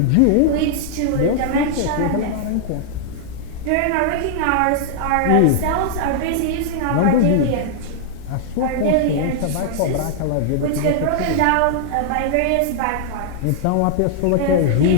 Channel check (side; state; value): both; different; correlation -0.01